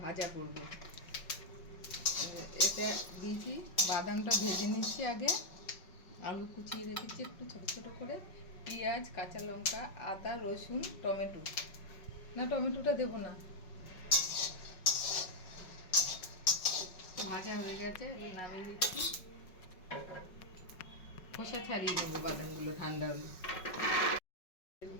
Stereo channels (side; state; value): right; late; 5.4 ms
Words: ভাজা করব। এটা দিয়েছি, বাদামটা ভেজে নিচ্ছি আগে, আলু কুচিয়ে রেখেছি একটু ছোটো ছোটো করে, পেঁয়াজ, কাঁচা লঙ্কা, আদা, রসুন, টমেটো, না টমেটোটা দেবো না, ভাজা হয়ে গেছে, এবার নামিয়ে দিচ্ছি। খোসা ছাড়িয়ে নেবো বাদামগুলো ঠান্ডা হলে। তেল